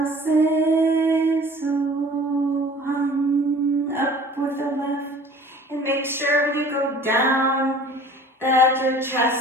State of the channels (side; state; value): both; normal; correlation 0.48